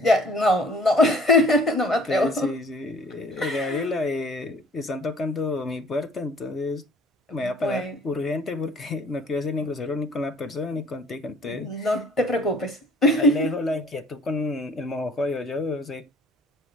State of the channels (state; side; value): normal; both; correlation 0.53